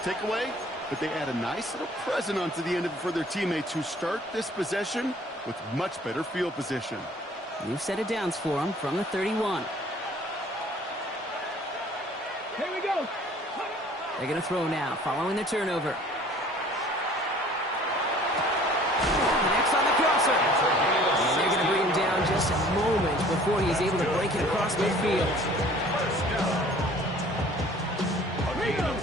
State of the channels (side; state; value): both; normal; correlation 0.52